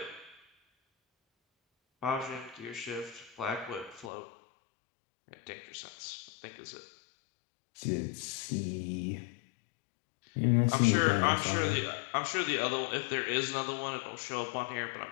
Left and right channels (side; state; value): right; drops out; at 4.1 s